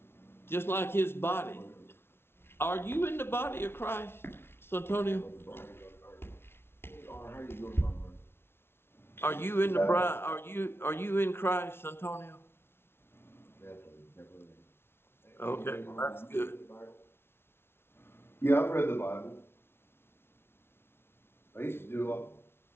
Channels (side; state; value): right; late; 0.12 ms